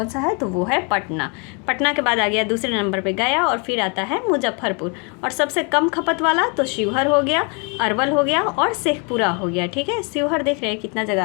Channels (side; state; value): right; quieter; 34.3 dB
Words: सा है? तो वो है पटना। पटना के बाद आ गया दूसरे नंबर पे गया और फिर आता है मुजफ्फरपुर। और सबसे कम खपत वाला तो शिवहर हो गया, अरवल हो गया और शेखपुरा हो गया। ठीक है, शिवहर देख रहे हैं कितना